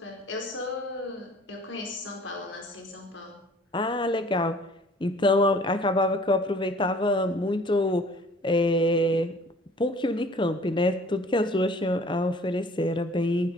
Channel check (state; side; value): normal; both; correlation 0.52